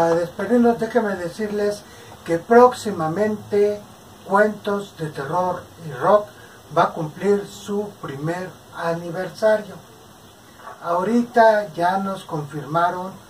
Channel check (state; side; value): identical; both; correlation 1.00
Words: despedirnos, déjenme decirles que próximamente Cuentos de Terror y Rock va a cumplir su primer aniversario. ahorita ya nos confirmaron